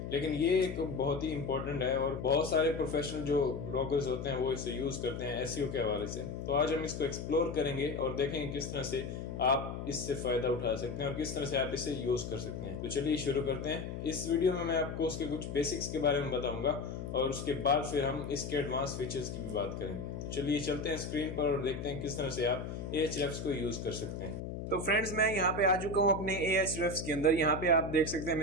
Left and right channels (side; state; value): left; noise; hum, 6 dB below the sound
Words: लेकिन ये एक बहुत ही इंपॉर्टेंट है और बहुत सारे प्रोफेशनल जो ब्लॉगर्स होते हैं वो इसे यूज करते हैं एसईओ के हवाले से। तो आज हम इसको एक्सप्लोर करेंगे और देखेंगे किस तरह से आप इससे फायदा उठा सकते हैं और किस तरह से आप इसे यूज कर सकते हैं। तो चलिए शुरू करते हैं। इस वीडियो में मैं आपको उसके कुछ बेसिक्स के बारे में बताऊंगा और उसके बाद फिर हम इसके एडवांस फीचर्स की भी बात करेंगे। तो चलिए चलते हैं स्क्रीन पर और देखते हैं किस तरह से आप Ahrefs को यूज कर सकते हैं। तो फ्रेंड्स, मैं यहाँ पे आ चुका हूँ अपने Ahrefs के अंदर। यहाँ पे आप देख सकते हैं